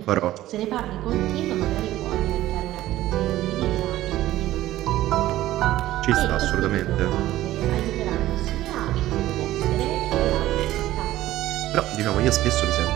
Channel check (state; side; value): quieter; left; 15.0 dB